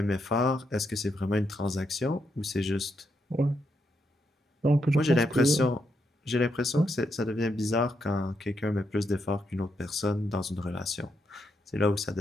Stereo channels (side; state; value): both; normal; correlation 0.80